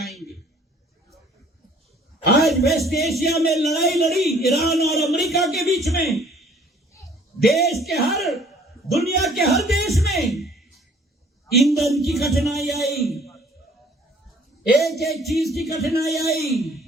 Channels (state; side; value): normal; both; correlation 0.56